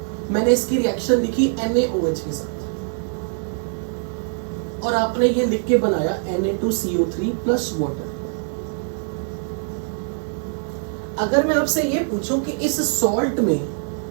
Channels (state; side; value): silent; left; 64 dB below the other